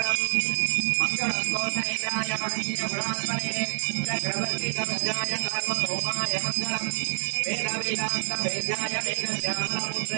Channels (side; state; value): left; silent; digital silence